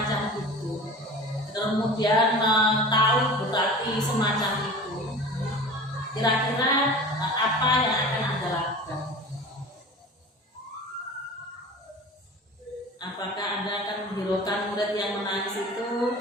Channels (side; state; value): both; normal; correlation 0.38